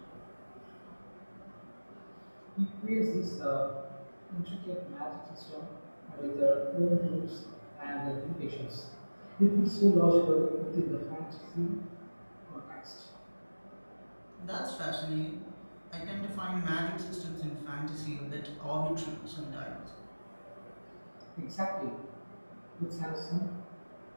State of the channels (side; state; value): both; inverted; correlation -1.00